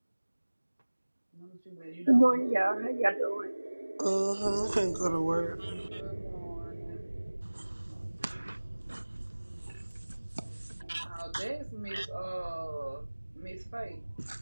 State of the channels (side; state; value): both; inverted; correlation -1.00